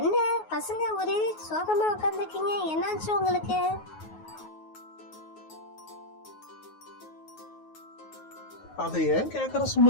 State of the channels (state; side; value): late; right; 9.4 ms